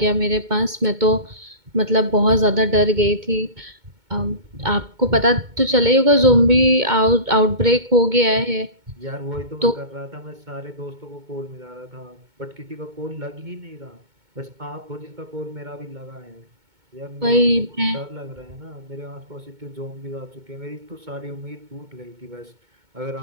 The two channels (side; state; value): left; late; 2.2 ms